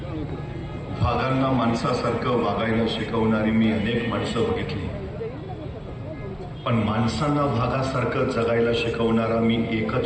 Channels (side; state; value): both; identical; correlation 1.00